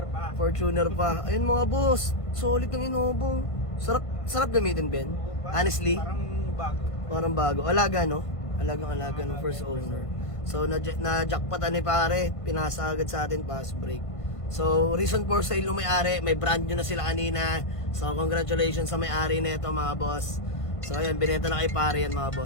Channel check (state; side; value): late; right; 1.5 ms